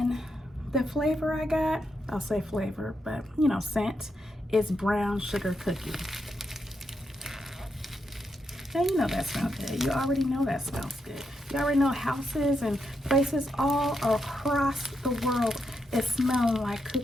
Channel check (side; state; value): both; normal; correlation 0.82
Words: the flavor I got, I'll say flavor, but you know, scent, is brown sugar cookie. Now you know that smells good. You already know that smells good. You already know houses and places all across the world is smelling like